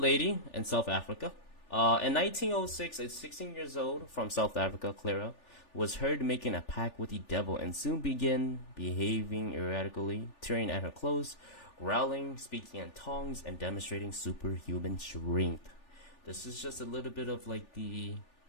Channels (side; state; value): right; late; 3.4 ms